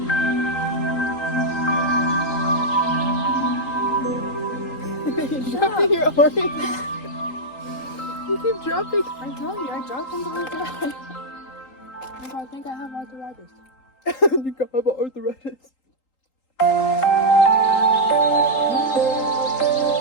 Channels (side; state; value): right; late; 3.8 ms